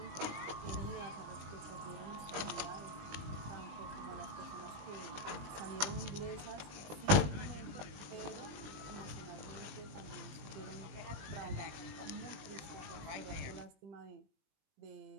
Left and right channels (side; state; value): left; late; 20 ms